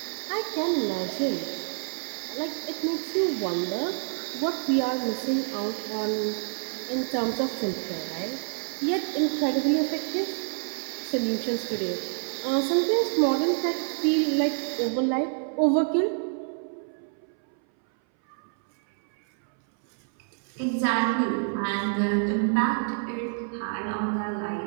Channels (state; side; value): silent; left; 60 dB below the other